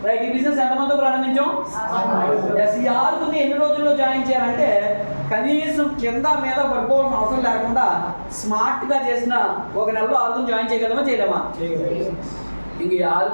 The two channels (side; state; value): both; inverted; correlation -1.00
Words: రైట్, ఈ బిజినెస్ ఎంతమందితో ప్రారంభించాం? ఈ 6 ఎన్ని రోజుల్లో జాయిన్ చేయాలంటే కనీసం కింద మీద పడిపోవాల్సిన అవసరం లేకుండా స్మార్ట్గా చేసిన 1 నెలలో 6 జాయిన్ చేయగలమా చేయలేమా? ఇంక ఈ